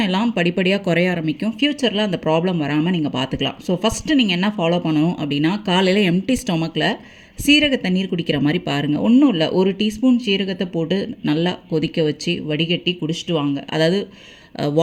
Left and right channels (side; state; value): both; identical; correlation 1.00